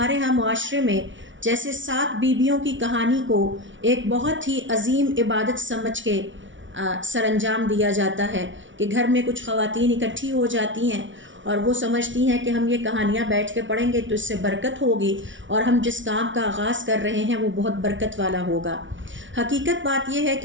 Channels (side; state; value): left; late; 0.56 ms